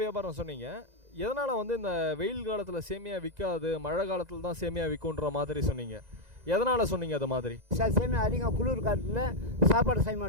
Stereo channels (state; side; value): late; left; 2.0 ms